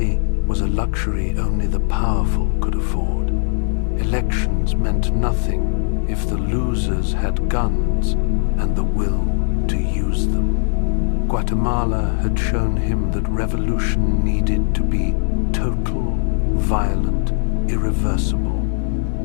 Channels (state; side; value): silent; right; digital silence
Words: was a luxury only the powerful could afford. Elections meant nothing if the losers had guns and the will to use them. Guatemala had shown him that revolution needed to be total, violent, irreversible.